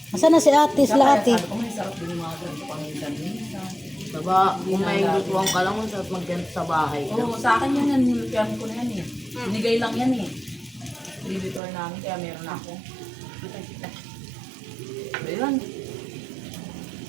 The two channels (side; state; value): left; drops out; at 11.6 s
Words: Asan na si ate, sila ate? Sabi ko, may sarap din yung mga ganito paminsan-minsan. Diba, kung may lutuan ka lang, sa magganto sa bahay. Oo, sa akin yan, nilutihan ko na yan eh. Binigay lang yan eh. Dibitor namin, kaya meron ako. Ayun.